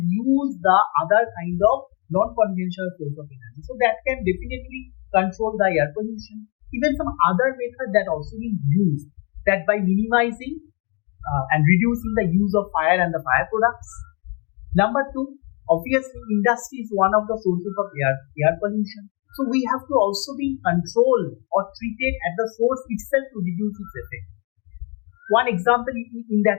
the other kind of non-conventional source of energy. So that can definitely control the air pollution. Even some other methods that also being used, that by minimizing and reducing the use of fire and the fire products. Number two, obviously industry is one of the sources of air pollution. So we have to also be controlled or treated at the source itself to reduce its effect. One example in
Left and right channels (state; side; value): quieter; right; 32.7 dB